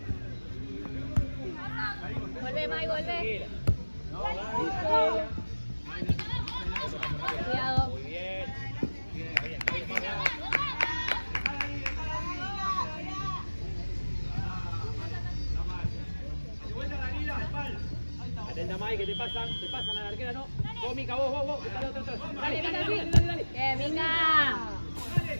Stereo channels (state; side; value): inverted; both; correlation -1.00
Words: Vuelve, Mai, vuelve. Cuidado. Muy bien. Atenta, Mai, que te pasan a la arquera, ¿no? Vos, Mica, vos. Dale. Bien, Mica.